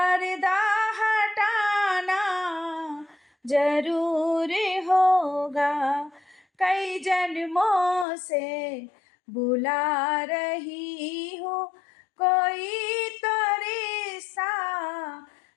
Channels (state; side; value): drops out; right; at 8.1 s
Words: हटाना जरूर होगा। कई जन्मों से बुला रही हूँ, कोई तो रिश्ता